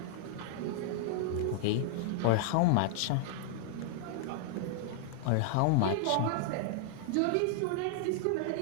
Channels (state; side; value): different; both; correlation -0.01